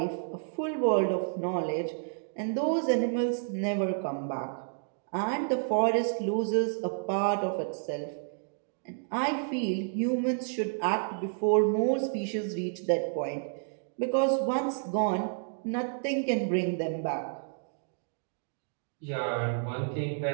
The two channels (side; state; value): left; silent; digital silence